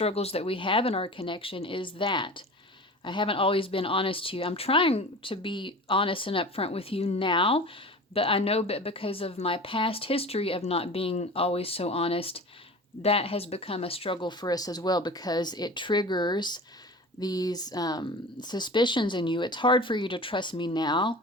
that we have in our connection, is that I haven't always been honest to you. I'm trying to be honest and upfront with you now, but I know that because of my past history of not being always so honest, that has become a struggle for us as well, because it triggers suspicions in you. It's hard for you to trust me now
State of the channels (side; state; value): both; normal; correlation 0.36